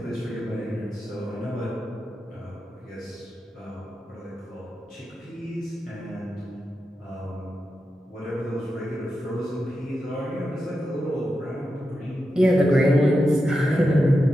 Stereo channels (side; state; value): both; normal; correlation 0.89